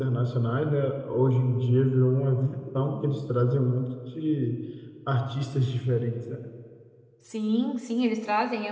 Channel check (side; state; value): both; identical; correlation 1.00